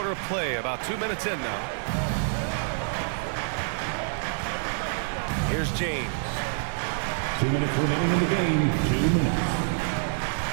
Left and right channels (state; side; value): silent; left; digital silence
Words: of play, about 2 minutes in now. Here's James. 2 minutes remaining in the game. 2 minutes.